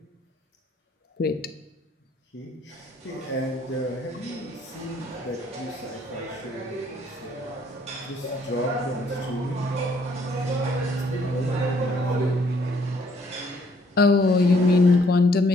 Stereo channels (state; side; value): normal; both; correlation 0.65